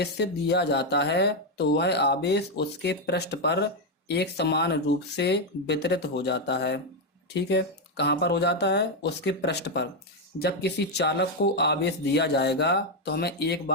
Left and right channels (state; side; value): normal; both; correlation 0.04